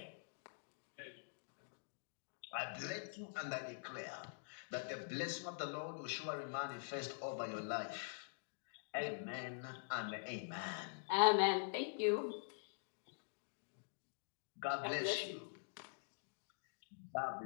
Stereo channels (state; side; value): silent; right; digital silence